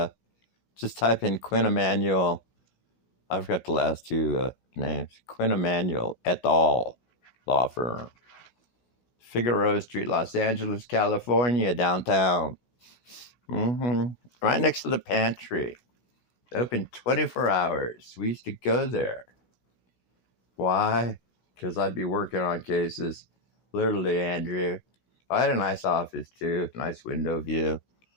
in Quinn Emanuel. I forgot the last two names. Quinn Emanuel et al. Law firm. Figueroa Street, Los Angeles, California, downtown. Right next to the pantry. Open 24 hours. We used to go there. Why? Because I'd be working on cases. Literally, Andrew. I had a nice office too. Nice window view.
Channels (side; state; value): right; late; 16 ms